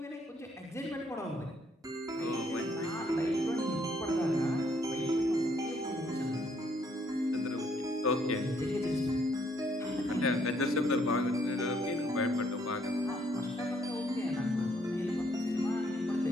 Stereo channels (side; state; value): both; normal; correlation 0.69